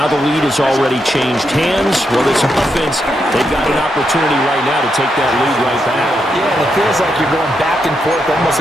the lead has already changed hands. Well, this offense, they've got an opportunity right now to take that lead right back. Yeah, and it feels like you're going back and forth, almost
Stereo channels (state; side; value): normal; both; correlation 0.82